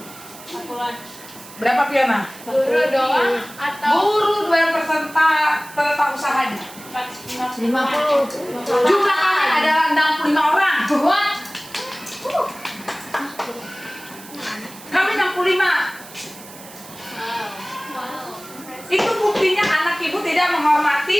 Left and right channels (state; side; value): noise; right; hiss, 18 dB below the sound